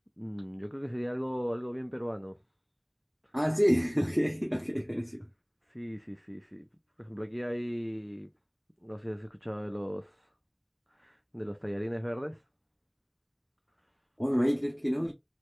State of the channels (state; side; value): identical; both; correlation 1.00